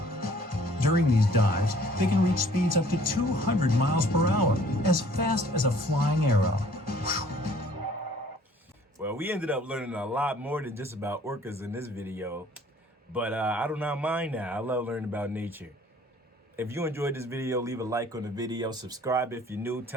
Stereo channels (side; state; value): both; normal; correlation 0.56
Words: During these dives, they can reach speeds up to 200 miles per hour, as fast as a flying arrow. Well, we ended up learning a lot more than just about orcas in this video, but I do not mind that. I love learning about nature. If you enjoyed this video, leave a like on the video, subscribe if you're new,